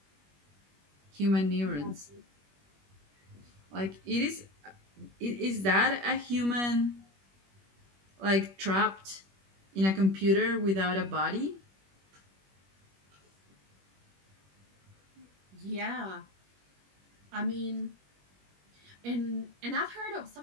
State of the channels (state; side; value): late; left; 21 ms